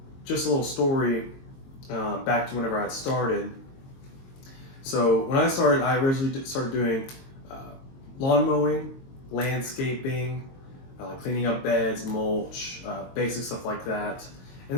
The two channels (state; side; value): late; right; 22 ms